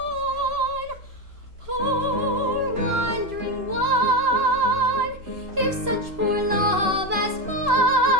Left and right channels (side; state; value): left; late; 2.9 ms